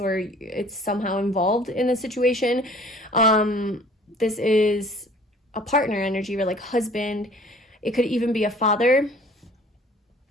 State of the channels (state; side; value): normal; both; correlation 0.51